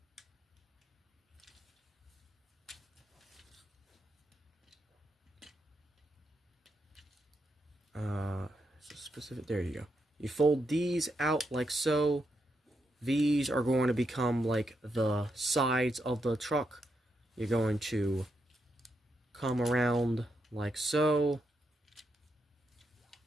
Specific, there you go. You fold these out like so. These are going to become like the sides of the truck. You're going to come around like so.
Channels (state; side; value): normal; both; correlation 0.82